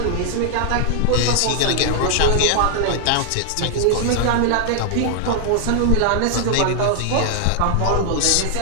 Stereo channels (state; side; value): different; both; correlation 0.00